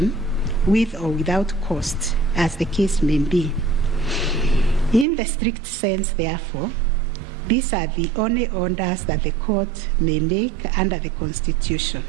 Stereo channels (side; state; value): left; drops out; at 5.1 s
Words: with or without cost, as the case may be. In the strict sense, therefore, these are the only orders that the court may make under the Constitution.